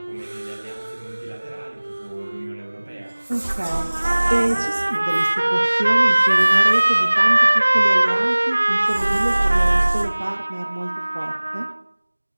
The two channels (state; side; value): inverted; both; correlation -1.00